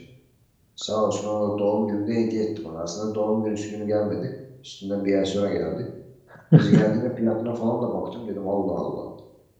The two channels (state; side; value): identical; both; correlation 1.00